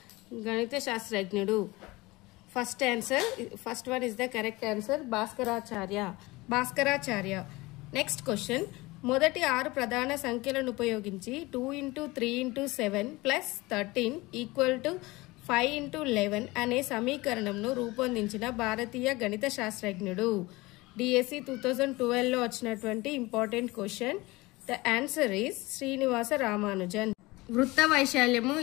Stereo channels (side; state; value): right; quieter; 21.8 dB